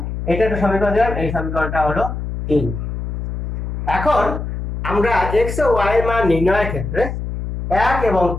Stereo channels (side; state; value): left; noise; hum, 5 dB below the sound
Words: এটা একটা সমীকরণ দিলাম, এই সমীকরণটা হলো 3। এখন আমরা x ও y এর মান নির্ণয়ের ক্ষেত্রে 1 এবং